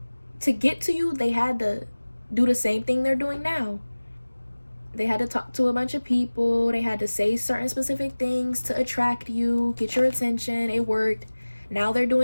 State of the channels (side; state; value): both; inverted; correlation -1.00